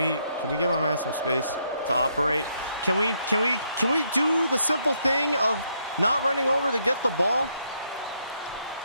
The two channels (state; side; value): inverted; both; correlation -0.75